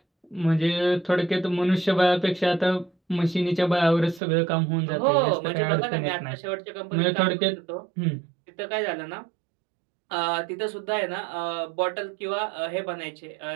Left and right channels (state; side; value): drops out; left; at 4.2 s